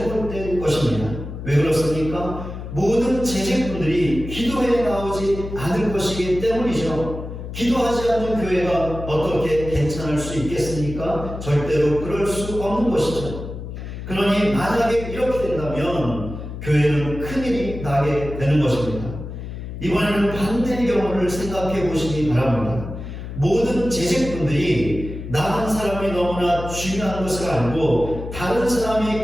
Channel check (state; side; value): noise; left; hum, 9 dB below the sound